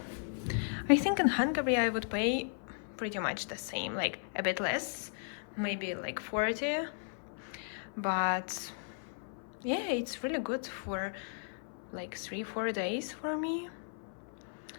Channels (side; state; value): right; silent; 54 dB below the other